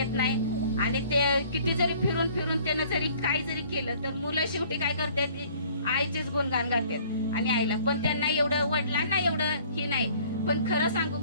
नाही. आणि ते किती जरी फिरून त्यानं जरी काही जरी केलं तर मुलं शेवटी काय करतात, आईचेच गुणगान गातात. आणि आईला पण त्यांना एवढं, वडिलांना एवढं ही नाही. पण खरं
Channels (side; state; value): both; inverted; correlation -0.55